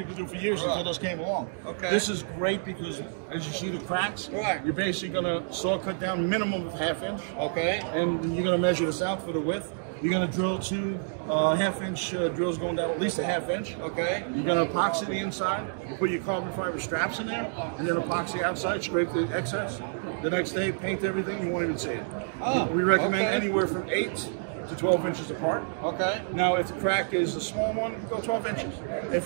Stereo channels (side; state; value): left; silent; digital silence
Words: to do for years until this came along. Okay. This is great because as you see the cracks, Right. you're basically going to saw cut down minimum of 1/2 inch. Okay. And you're going to measure this out for the width. You're going to drill 2 1/2 inch drills going down at least 1/2 inch. Okay. You're going to epoxy the inside. You put your carbon fiber straps in there, and then epoxy outside, scrape the excess. The next day, paint everything. You won't even see it. Oh, we recommend okay. anywhere from 8 to 12 inches apart. Okay. Now, if the crack is a small one, go 12 inches.